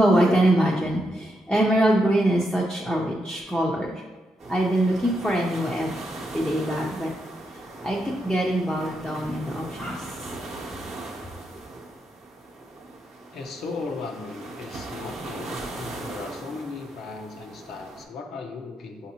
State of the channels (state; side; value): normal; both; correlation 0.82